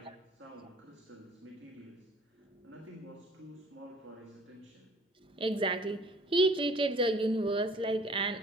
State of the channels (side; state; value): both; normal; correlation 0.53